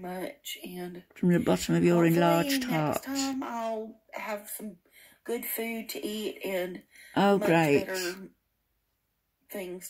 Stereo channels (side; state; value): both; identical; correlation 1.00